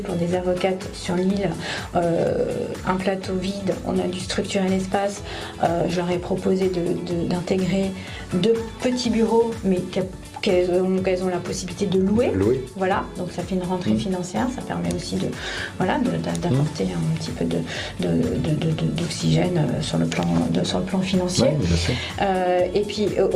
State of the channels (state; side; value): identical; both; correlation 1.00